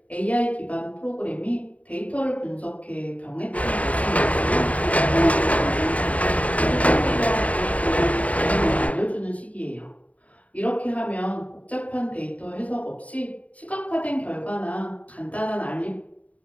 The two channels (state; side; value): late; right; 0.068 ms